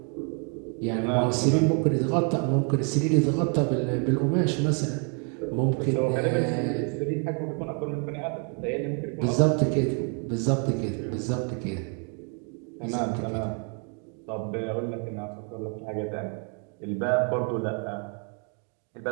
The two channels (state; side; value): quieter; left; 39.9 dB